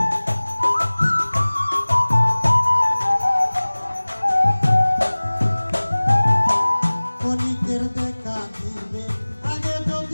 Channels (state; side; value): inverted; both; correlation -1.00